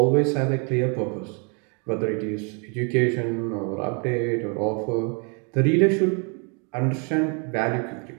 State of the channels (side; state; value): left; quieter; 36.1 dB